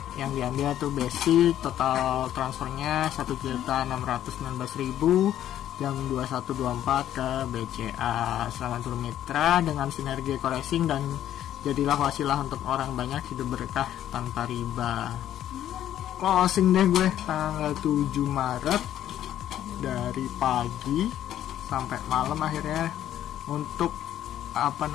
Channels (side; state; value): right; quieter; 11.6 dB